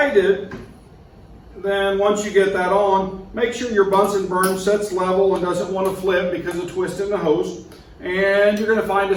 it, then once you get that on, make sure your Bunsen burner sets level and doesn't want to flip because of twisting the hose, and you're going to find a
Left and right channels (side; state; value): both; identical; correlation 1.00